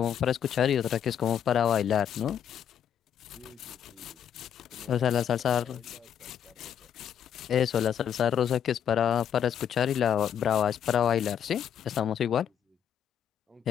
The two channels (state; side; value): quieter; right; 8.9 dB